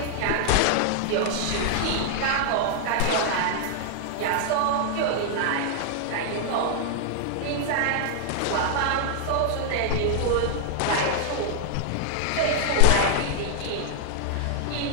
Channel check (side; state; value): both; different; correlation -0.01